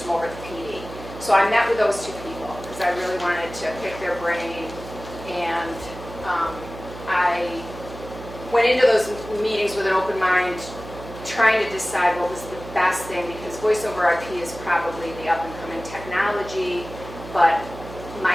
over the PD. So I met with those 2 people because I really wanted to pick their brain, and I went into those meetings with an open mind, trying to decide what was the best thing, because voice over IP is probably the up-and-coming technology, but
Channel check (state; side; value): noise; right; hum, 13 dB below the sound